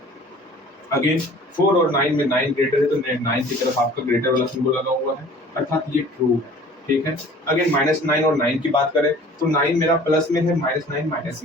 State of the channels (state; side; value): normal; both; correlation 0.48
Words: अगेन 4 और 9 में 9 ग्रेटर है, तो 9 की तरफ आपका ग्रेटर वाला सिंबल लगा हुआ है, अर्थात ये ट्रू है, ठीक है। अगेन -9 और 9 की बात करें तो 9 मेरा प्लस में है, -9 माइनस